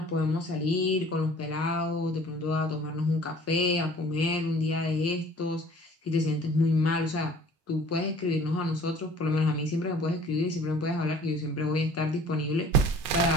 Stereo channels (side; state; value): both; normal; correlation 0.50